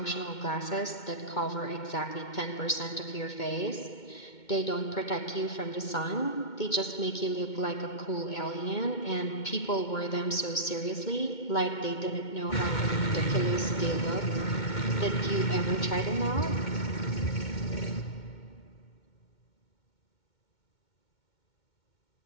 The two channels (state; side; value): late; right; 2.2 ms